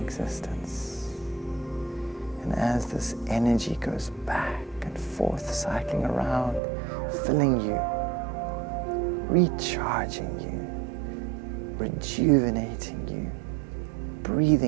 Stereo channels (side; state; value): left; drops out; at 6.6 s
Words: And as this energy goes back and forth, cycling around, filling you, recharging you, rejuvenating you,